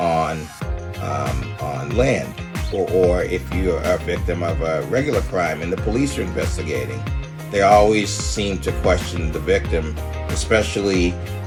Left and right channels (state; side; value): identical; both; correlation 1.00